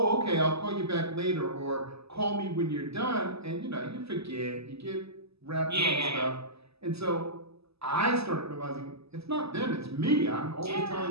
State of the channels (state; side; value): late; left; 0.78 ms